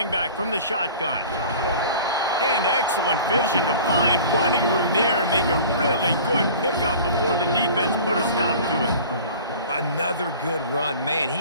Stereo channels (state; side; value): inverted; both; correlation -0.43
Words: back from the shotgun. And excellent vision to find running room there and make a really good pickup before the defense put a stop to it. Another good run. Man,